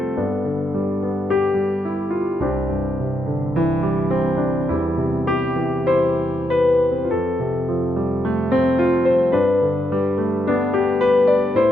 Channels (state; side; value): normal; both; correlation 0.81